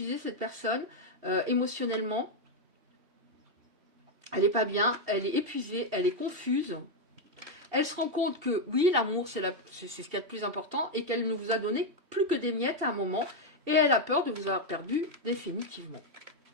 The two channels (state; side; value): late; left; 2.7 ms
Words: cette personne, émotionnellement. Elle n'est pas bien, elle est épuisée, elle est confuse. Elle se rend compte que, oui, l'amour, c'est ce qu'il y a de plus important et qu'elle ne vous a donné plus que des miettes à un moment. Et elle a peur de vous avoir perdu définitivement.